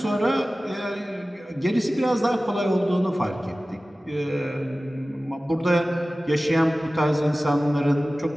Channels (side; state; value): both; normal; correlation 0.97